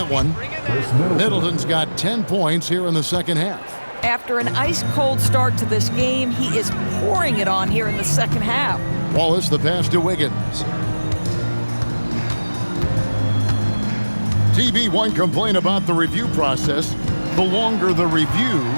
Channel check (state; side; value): inverted; both; correlation -1.00